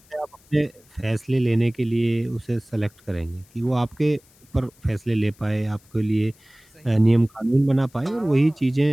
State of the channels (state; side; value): noise; left; hiss, 30 dB below the sound